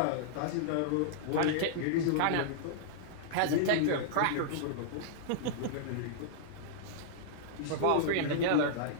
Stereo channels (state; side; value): different; both; correlation -0.02